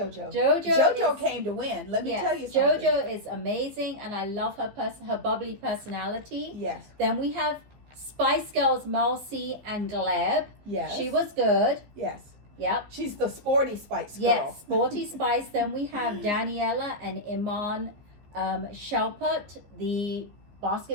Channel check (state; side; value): late; left; 14 ms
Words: Jojo came to win. Let me tell you something. Jojo is amazing, and I love her bubbly personality. Yes. Then we have Spice Girls, Malcy and Gleb. Yes. She was good. Yes. Yep. She's the sporty Spice girl. Yes, sporty Spice. Then we have Daniela and Iman Shalput, the